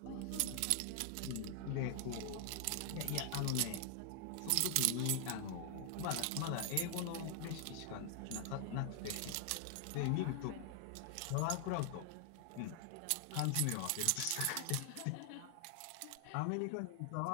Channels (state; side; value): different; both; correlation 0.00